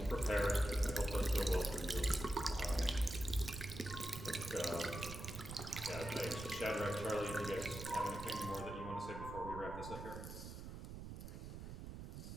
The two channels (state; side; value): noise; right; rumble, 9 dB below the sound